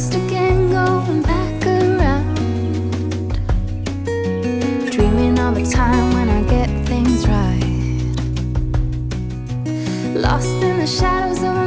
again, going back around, dreaming of a time when I get things right. Lost in the shadows of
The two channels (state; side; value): identical; both; correlation 1.00